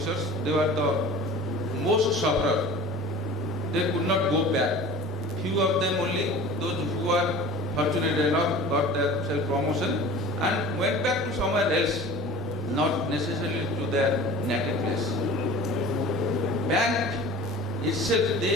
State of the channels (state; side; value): normal; both; correlation 0.40